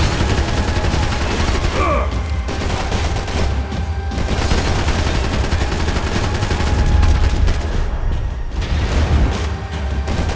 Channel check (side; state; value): both; identical; correlation 1.00